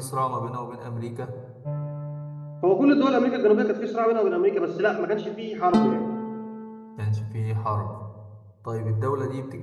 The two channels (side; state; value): both; identical; correlation 1.00